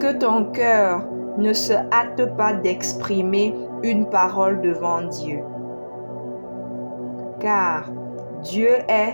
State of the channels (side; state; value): both; inverted; correlation -1.00